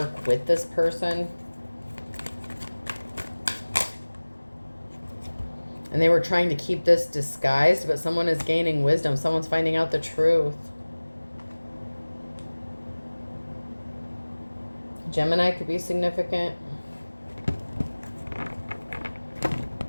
with this person. And they were trying to keep this disguised, but someone is gaining wisdom. Someone's finding out the truth. Gemini could be significant.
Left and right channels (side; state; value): both; inverted; correlation -1.00